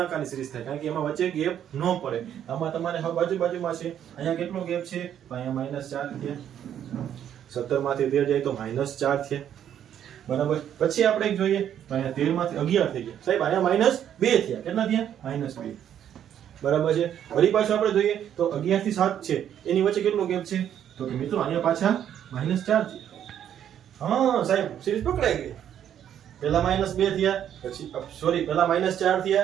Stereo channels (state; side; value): quieter; left; 9.9 dB